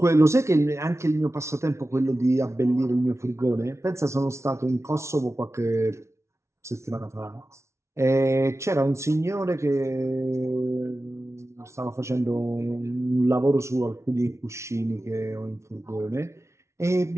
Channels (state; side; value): late; left; 0.13 ms